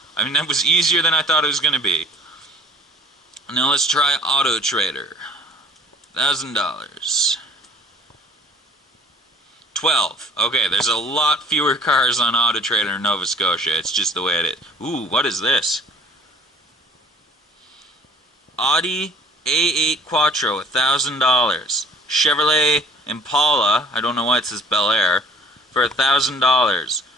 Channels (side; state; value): both; normal; correlation 0.51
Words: I mean, that was easier than I thought it was going to be. Now let's try Auto Trader. $1,000. 12. Okay, there's a lot fewer cars on Auto Trader in Nova Scotia. It's just the way it is. Ooh, what is this? Audi A8 Quattro, $1,000. Chevrolet Impala, I don't know why it says Bel Air, for $1,000.